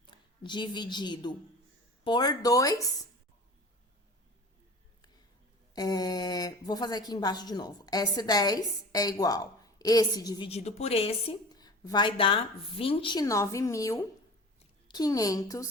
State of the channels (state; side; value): normal; both; correlation 0.38